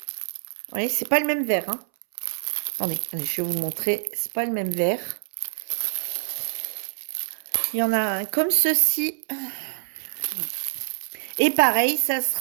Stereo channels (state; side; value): silent; left; 61 dB below the other